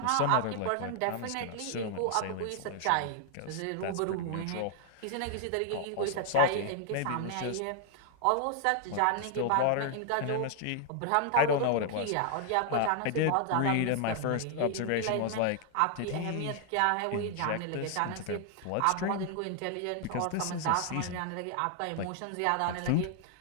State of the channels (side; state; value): both; different; correlation 0.00